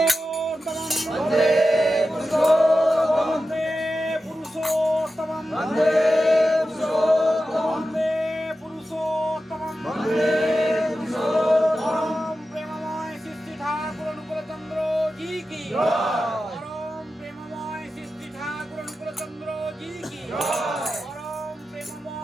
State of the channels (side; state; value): both; normal; correlation 0.92